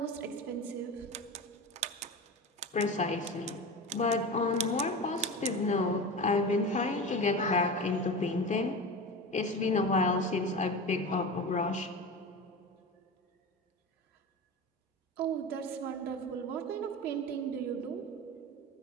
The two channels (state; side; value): normal; both; correlation 0.28